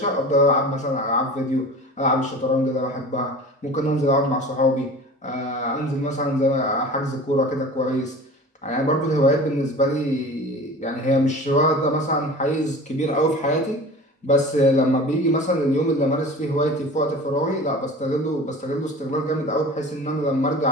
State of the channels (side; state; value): both; normal; correlation 0.38